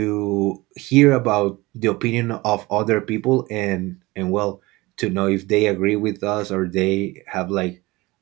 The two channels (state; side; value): quieter; left; 21.4 dB